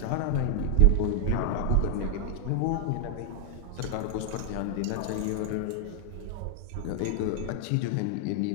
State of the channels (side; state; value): both; different; correlation 0.00